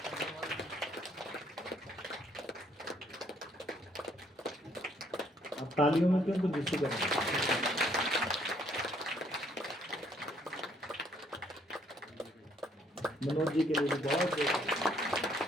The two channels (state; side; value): normal; both; correlation 0.66